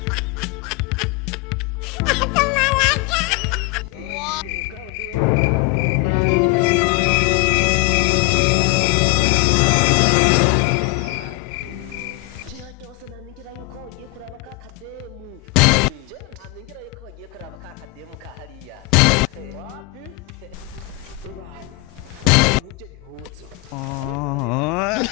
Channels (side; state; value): right; quieter; 20.9 dB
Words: Kau ndiwe warika niho nariyo iri kumwe musikora kigeze ndodora ngaho man je cyose namingira yuko wagiye kuraba ka kademu je namingira yuko wagiye kuraba ka kademu ka hariya Wapi? Ibana bambaye nk'ibyo bihuzo neza na neza kuva